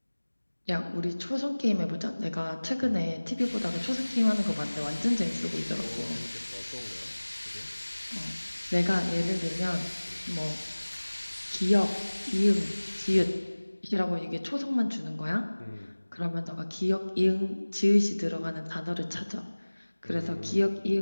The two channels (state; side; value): inverted; both; correlation -1.00